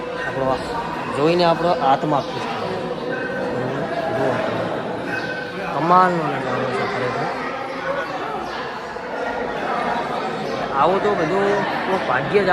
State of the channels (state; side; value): identical; both; correlation 1.00